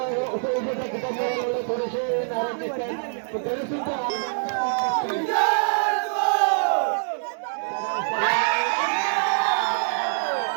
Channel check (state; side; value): silent; left; digital silence